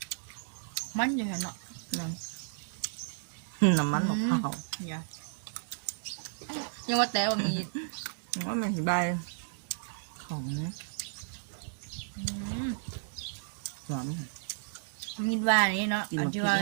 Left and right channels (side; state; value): left; silent; digital silence